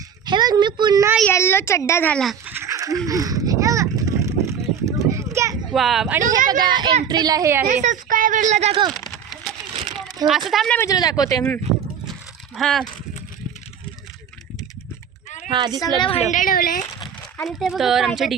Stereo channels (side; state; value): left; quieter; 7.7 dB